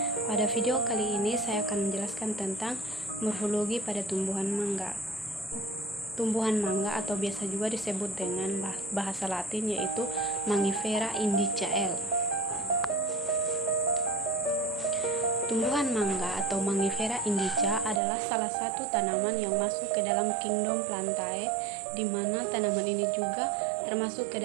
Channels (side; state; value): left; drops out; at 18.0 s